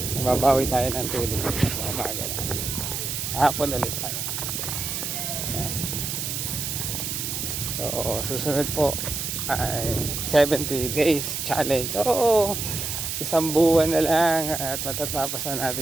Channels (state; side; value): noise; right; hiss, 3 dB below the sound